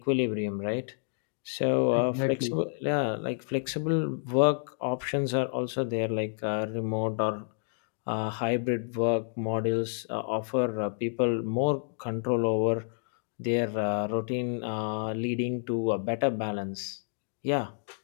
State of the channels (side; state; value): right; silent; digital silence